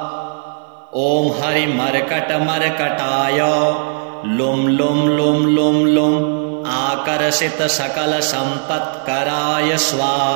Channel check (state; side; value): silent; left; 55 dB below the other